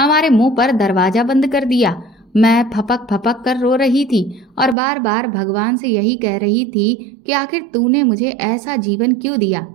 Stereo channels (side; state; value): left; drops out; at 4.8 s